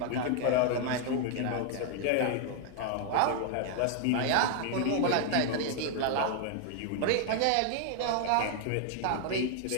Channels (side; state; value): both; different; correlation 0.00